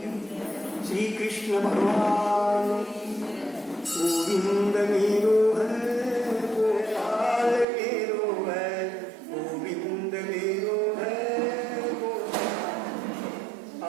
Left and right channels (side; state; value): left; drops out; at 7.7 s